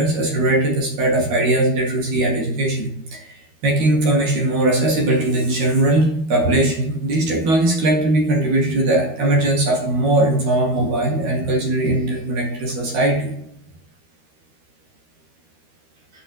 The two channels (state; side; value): late; left; 13 ms